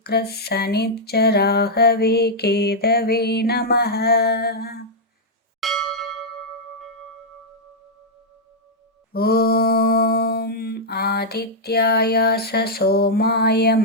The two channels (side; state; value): both; normal; correlation -0.06